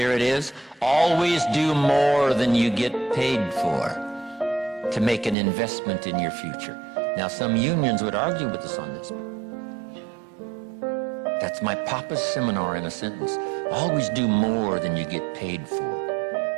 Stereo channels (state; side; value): drops out; left; at 5.4 s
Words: it is. Always do more than you get paid for to make an investment in your future. Now, some unions would argue with us on this. That's my papa's seminar in a sentence. Always do more than you get paid